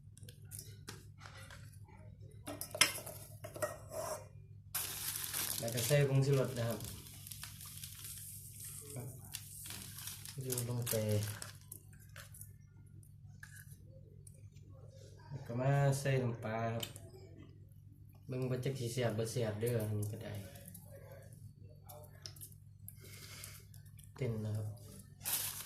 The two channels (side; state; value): both; identical; correlation 1.00